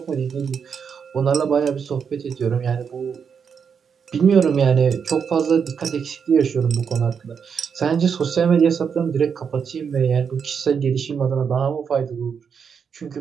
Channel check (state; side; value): quieter; left; 6.7 dB